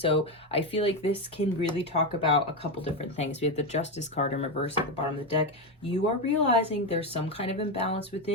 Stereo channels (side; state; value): both; normal; correlation 0.11